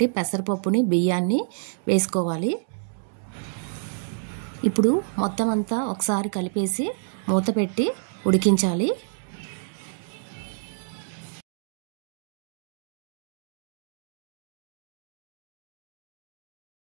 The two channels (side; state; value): left; silent; digital silence